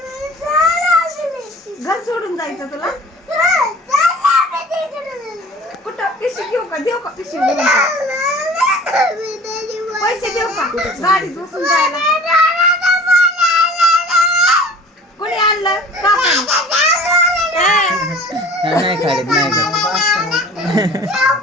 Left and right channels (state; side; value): normal; both; correlation 0.44